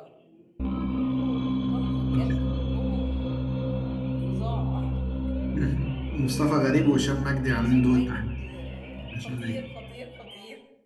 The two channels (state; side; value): identical; both; correlation 1.00